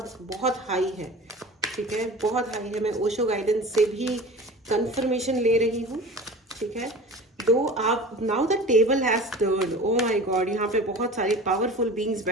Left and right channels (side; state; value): both; normal; correlation 0.37